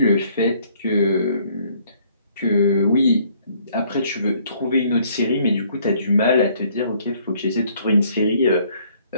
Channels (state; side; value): inverted; both; correlation -0.63